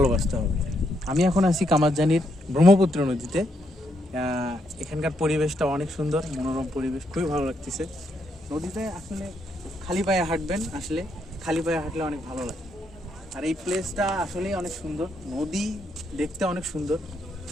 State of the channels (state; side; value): normal; both; correlation 0.77